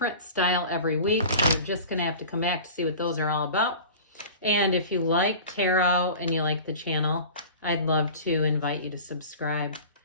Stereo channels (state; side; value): inverted; both; correlation -0.38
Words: style every week. You're just going to have to come back to see what those are all about. And if you like tarot and you like the channel, I'd love to invite you to subscribe